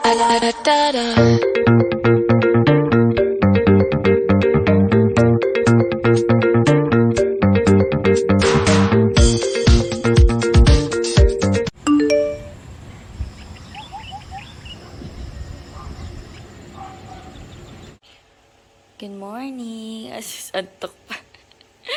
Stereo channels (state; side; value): identical; both; correlation 1.00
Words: morning. Antok pa.